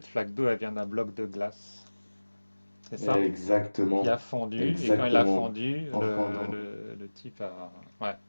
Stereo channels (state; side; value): inverted; both; correlation -1.00